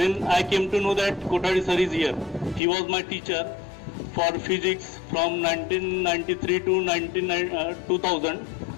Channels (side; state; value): right; drops out; at 2.6 s